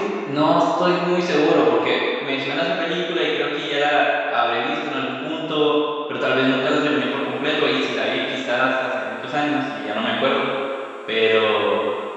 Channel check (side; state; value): both; identical; correlation 1.00